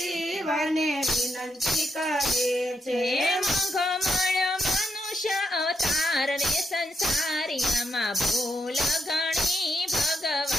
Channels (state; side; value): normal; both; correlation 0.83